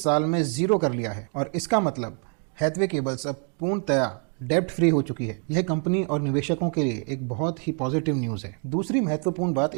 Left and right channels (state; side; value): quieter; left; 38.9 dB